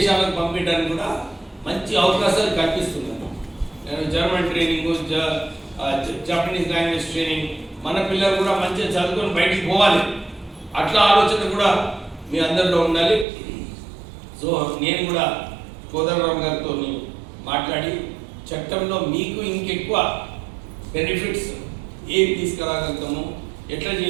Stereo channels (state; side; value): drops out; left; at 13.2 s